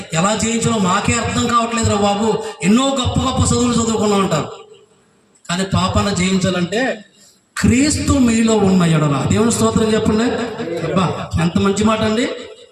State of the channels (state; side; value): identical; both; correlation 1.00